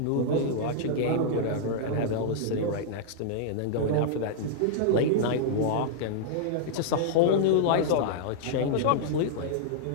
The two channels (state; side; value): different; both; correlation -0.01